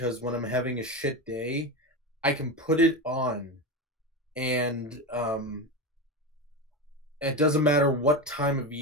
when I'm having a shit day, I can put it on and it doesn't matter what time of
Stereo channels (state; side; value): normal; both; correlation 0.19